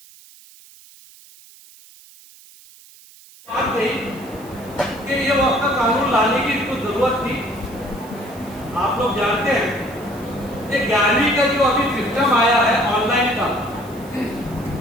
بات کہی کہ یہ وقت کا قانون لانے کی اس کو ضرورت تھی. آپ لوگ جانتے ہیں کہ 11ویں کا جو ابھی سسٹم آیا ہے آن لائن کا،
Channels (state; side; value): noise; right; hiss, 23 dB below the sound